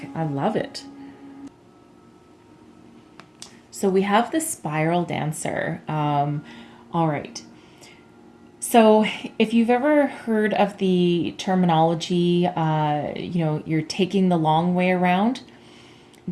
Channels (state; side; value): identical; both; correlation 1.00